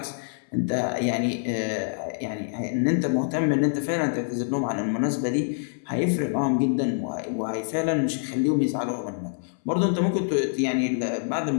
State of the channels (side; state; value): right; silent; 61 dB below the other